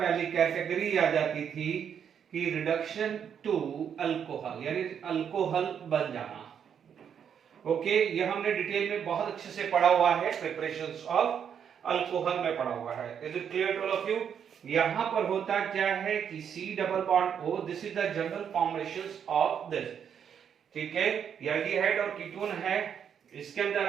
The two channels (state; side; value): quieter; left; 8.0 dB